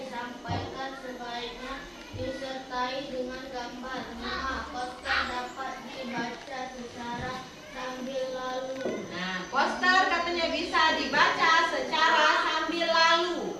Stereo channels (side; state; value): both; identical; correlation 1.00